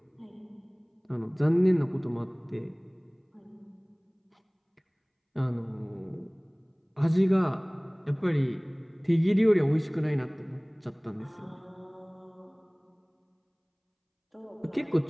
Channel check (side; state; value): both; identical; correlation 1.00